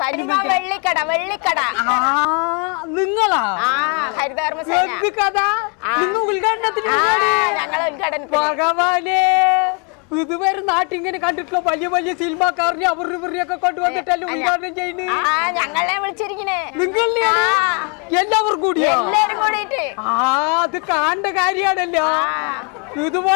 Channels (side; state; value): right; quieter; 37.8 dB